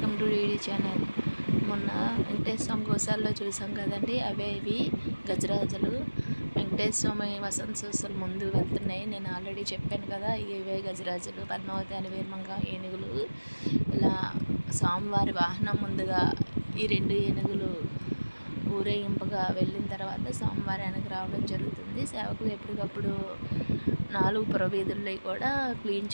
to DD channel. మొన్న వెంకటేశ్వర స్వామి గోశాలలో చూసాం కదండి, అవే ఇవి గజరాజులు. వెంకటేశ్వర స్వామి వసంతోత్సవాలు ముందు వెళ్తున్నాయి. నేను ఆల్రెడీ చెప్పాను కదా, ఇవే గజరాజులు, పద్మావతి అని వీరమంగ ఏనుగులు. ఇలా స్వామివారి వాహనం ముందుగా ఈ రెండు ఏనుగులు ఊరేగింపుగా వెళ్ళిన తర్వాత స్వామివారి వెనక్కి రావడం జరుగుతుంది. సేవకులు ఎప్పటికప్పుడు 4 పురవీధుల్లో కూడా క్లీన్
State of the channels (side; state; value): both; inverted; correlation -1.00